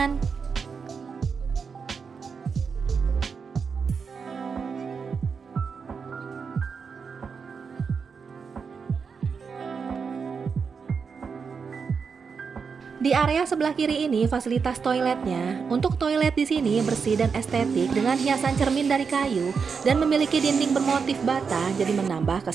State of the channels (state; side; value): quieter; left; 5.7 dB